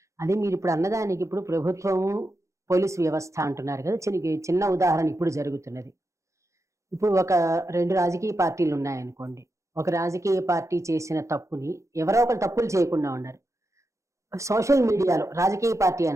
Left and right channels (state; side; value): late; left; 0.15 ms